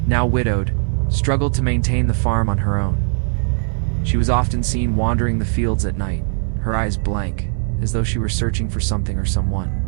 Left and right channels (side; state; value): left; silent; 62 dB below the other